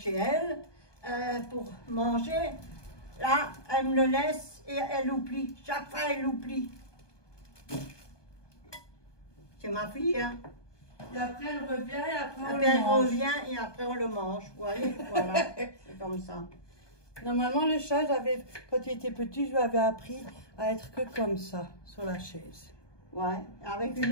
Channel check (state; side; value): late; right; 1.2 ms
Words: elle, pour manger. Là, elle me le laisse et elle oublie. Chaque fois, elle oublie. C'est ma fille, hein. Et après, elle revient et après, on Après, le elle mange. revient et après, on le mange. Vous voyez, voilà. C'est comme ça. Normalement, le chat, quand il était petit, je lui avais appris à être que comme ça, sur la chaise. Ouais, avec